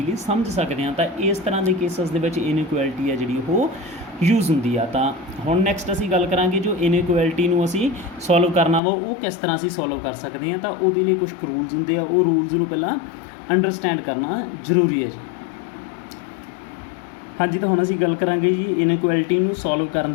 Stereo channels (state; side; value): drops out; right; at 8.8 s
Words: ਸਮਝ ਸਕਦੇ ਹਾਂ। ਤਾਂ ਇਸ ਤਰ੍ਹਾਂ ਦੇ ਕੇਸਿਸ ਦੇ ਵਿੱਚ ਇਨਇਕੁਐਲਿਟੀ ਹੈ ਜਿਹੜੀ ਉਹ ਯੂਜ਼ ਹੁੰਦੀ ਆ। ਤਾਂ ਹੁਣ ਨੈਕਸਟ ਅਸੀਂ ਗੱਲ ਕਰਾਂਗੇ ਜੋ ਇਨਇਕੁਐਲਿਟੀ ਨੂੰ ਅਸੀਂ ਸੋਲਵ ਕਰਨਾ ਵਾ ਉਹ ਕਿਸ ਤਰ੍ਹਾਂ ਅਸੀਂ ਸੋਲਵ ਕਰ ਸਕਦੇ ਹਾਂ। ਤਾਂ ਉਹਦੇ ਲਈ ਕੁਝ ਰੂਲਸ ਹੁੰਦੇ ਆ, ਉਹ ਰੂਲਸ ਨੂੰ ਪਹਿਲਾਂ ਅੰਡਰਸਟੈਂਡ ਕਰਨਾ ਜ਼ਰੂਰੀ ਹੈ ਜੀ। ਹਾਂਜੀ, ਤਾਂ ਹੁਣ ਅਸੀਂ ਗੱਲ ਕਰਾਂਗੇ ਜੀ ਇਨਇਕੁਐਲਿਟੀ ਨੂੰ ਸੋਲਵ ਕਰਨ